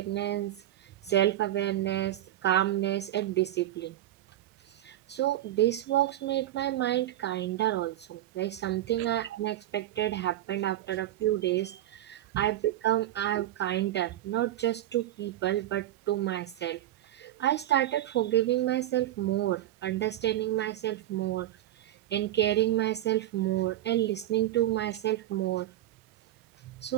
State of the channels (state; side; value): quieter; left; 13.5 dB